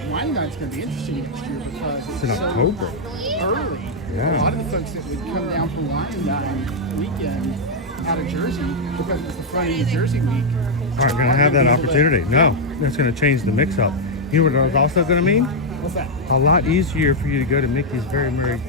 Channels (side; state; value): both; normal; correlation -0.02